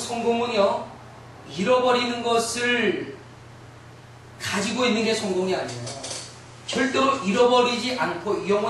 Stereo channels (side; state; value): both; identical; correlation 1.00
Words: 잃어버리는 것을 가지고 있는 게 성공이 아니에요. 절대로 잃어버리지 않고